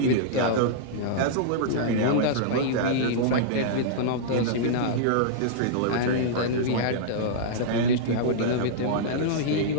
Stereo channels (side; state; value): both; different; correlation -0.02